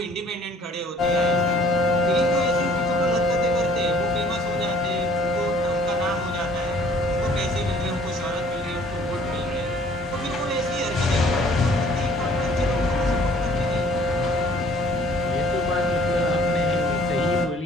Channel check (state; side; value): normal; both; correlation 0.56